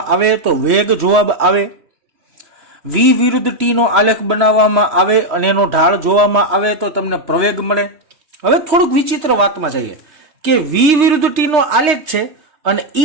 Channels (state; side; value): late; left; 3.0 ms